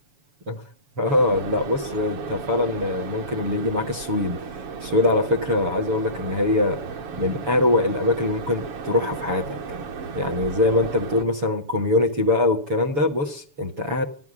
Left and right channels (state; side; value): late; left; 7.0 ms